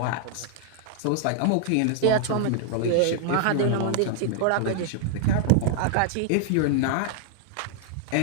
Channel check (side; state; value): both; different; correlation 0.00